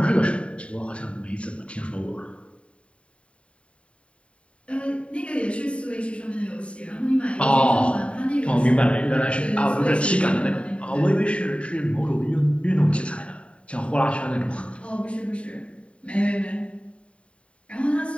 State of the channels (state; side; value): late; right; 0.061 ms